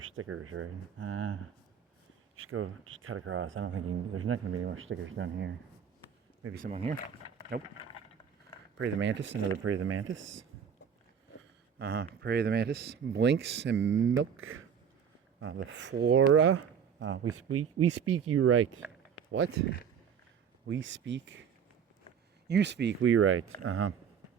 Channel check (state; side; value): quieter; left; 7.6 dB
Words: stickers, right? Just cut across. I don't think there's not gonna be any more stickers down here. Maybe some on here? Nope. Prey the Mantis, another Prey the Mantis. Prey the Mantis, Blinks and Milk. The Flora. We speak, you write. What? We speak. You speak, we write.